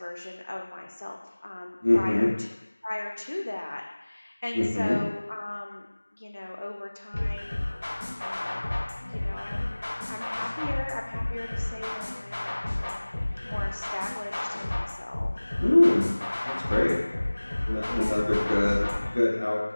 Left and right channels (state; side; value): inverted; both; correlation -1.00